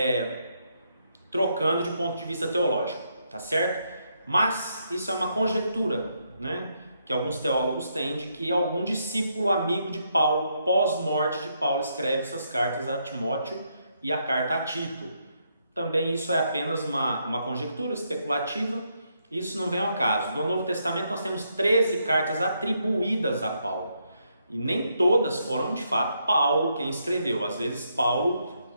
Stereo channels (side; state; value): both; inverted; correlation -0.77